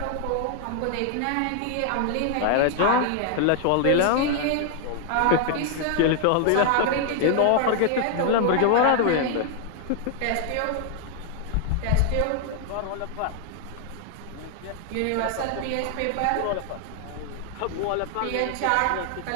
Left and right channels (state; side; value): different; both; correlation 0.00